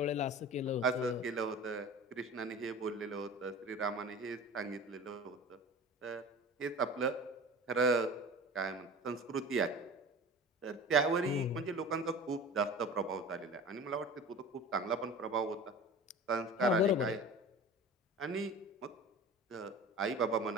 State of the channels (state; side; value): normal; both; correlation 0.37